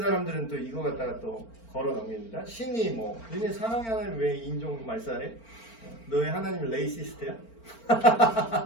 또 이거 갖다가 또 걸어 넘깁니다. 신이 뭐 너네 사랑의 하나님 왜 인종 말살해? 너의 하나님은 레이시스트야?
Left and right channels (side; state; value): right; late; 4.4 ms